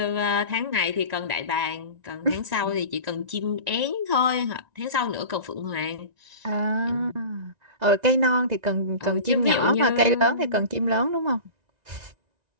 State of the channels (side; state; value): left; late; 1.9 ms